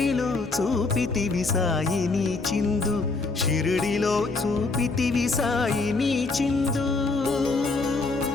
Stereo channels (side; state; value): right; quieter; 3.7 dB